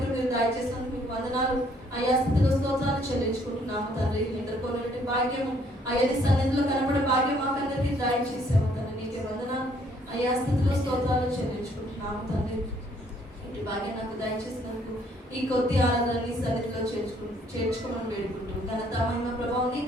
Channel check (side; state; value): both; normal; correlation 0.64